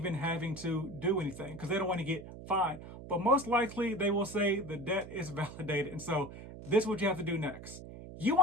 having to do anything because they don't want to get fined. But most likely they will say the debt is validated. And so this is what you have to do next. You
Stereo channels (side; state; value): right; noise; hum, 13 dB below the sound